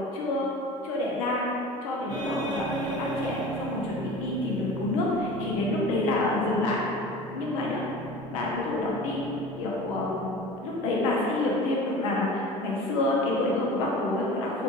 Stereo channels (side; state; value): both; normal; correlation 0.38